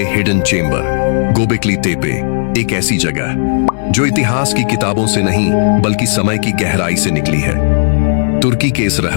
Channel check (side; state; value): right; silent; digital silence